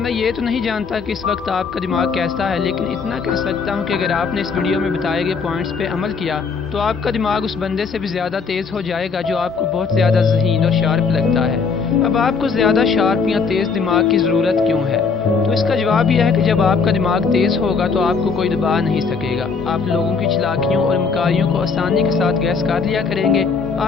ये तो नहीं जानता कि इस वक्त आपका दिमाग कैसा है, लेकिन इतना कह सकता हूँ कि अगर आपने इस वीडियो में बताए गए पॉइंट्स पे अमल किया तो आपका दिमाग उस बंदे से भी ज़्यादा तेज़ हो जाएगा जो आपको बहुत ज़्यादा ज़हीन और शार्प लगता है। अब आपको ज़्यादा शार्प या तेज़ दिमाग की ज़रूरत क्यों है? तो इसका जवाब यह है कि जब आपका दिमाग तेज़ होगा तो आपको कोई दबा नहीं सकेगा। आप लोगों की चालाकियों और मकारियों को आसानी के साथ गैस कर लिया करेंगे।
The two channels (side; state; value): right; quieter; 5.2 dB